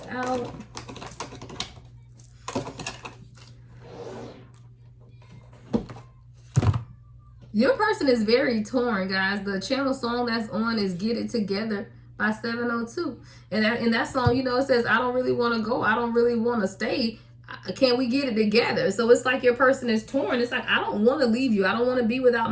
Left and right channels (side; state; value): both; identical; correlation 1.00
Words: out. Your person is very torn, guys. The channel song that's on is Get It Together by 702. And that song, you know, it says, I don't really want to go. I don't really want to stay. Can we get it together? So it's like your person is torn. It's like, I don't want to leave you. I don't want to be without